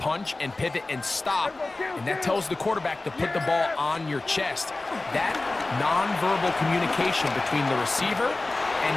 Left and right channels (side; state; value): right; quieter; 3.1 dB